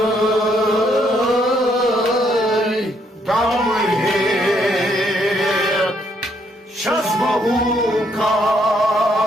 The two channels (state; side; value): normal; both; correlation 0.71